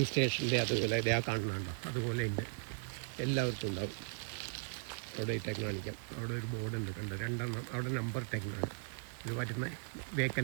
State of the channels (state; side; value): silent; left; 53 dB below the other